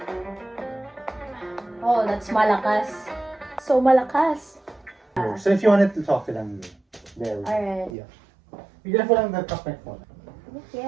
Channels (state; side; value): drops out; left; at 8.0 s